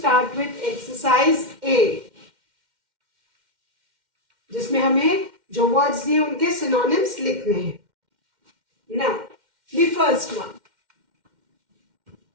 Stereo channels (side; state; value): left; late; 2.1 ms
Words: with exercise A, जिसमें हमें जो वर्ड्स दिए उनके सिनोनिम्स लिखने हैं. Now the first one,